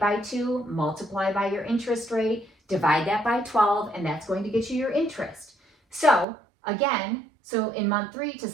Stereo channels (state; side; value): drops out; left; at 6.2 s